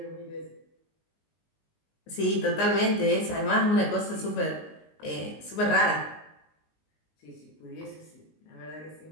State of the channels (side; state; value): right; late; 19 ms